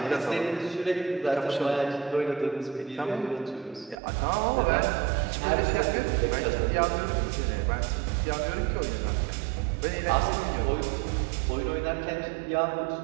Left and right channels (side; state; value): left; drops out; at 4.0 s